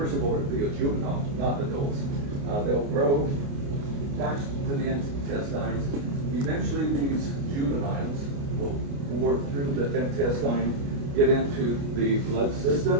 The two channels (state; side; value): late; left; 29 ms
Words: of all, the juvenile, not adults. They'll grow, attach to the intestines. Eventually, these juveniles will bore through the intestine, get into the blood